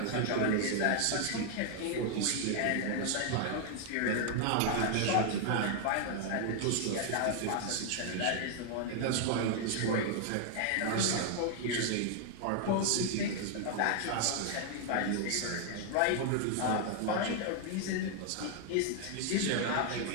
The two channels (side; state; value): both; different; correlation 0.00